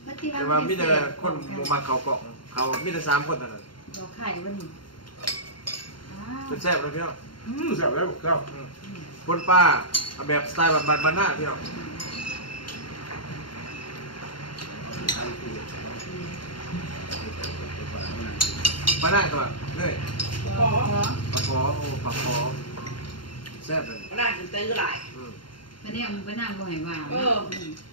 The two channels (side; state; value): right; late; 0.72 ms